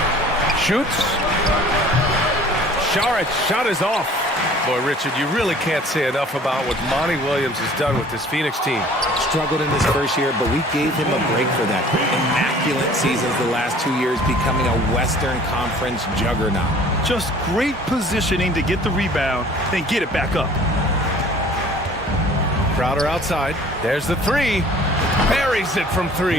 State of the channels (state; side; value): normal; both; correlation 0.50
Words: Shoots. Sharic's shot is off. Boy, Richard, you really can't say enough about what Monty Williams has done with this Phoenix team. Struggled in his first year, but we gave him a break for that. Immaculate seasons the last 2 years, becoming a Western Conference juggernaut. Just great positioning to get the rebound, then get it back up. Crowder outside. There's the three. Buries it from